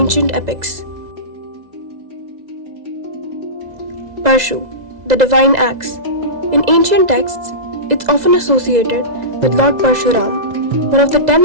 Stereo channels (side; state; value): left; late; 2.0 ms